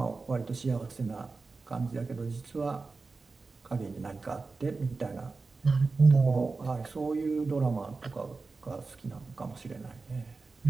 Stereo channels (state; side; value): quieter; left; 4.0 dB